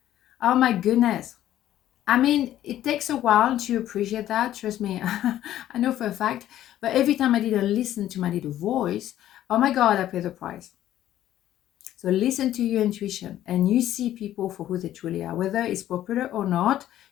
Oh my goodness. I mean, it takes a while to appreciate that. Trust me, I know for a fact. But every time I did listen to my little voice, oh my God, I pay the price. So listen to your intuition and you see people for who they truly are. Whether it's popular or not,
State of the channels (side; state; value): right; quieter; 12.6 dB